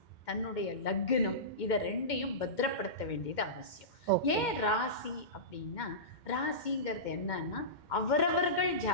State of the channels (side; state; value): right; late; 2.1 ms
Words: தன்னுடைய லக்னம், இதை ரெண்டையும் பத்திரப்படுத்த வேண்டியது அவசியம். ஏன் ராசி அப்படின்னா, ராசிங்கிறது என்னன்னா அவரவர்கள்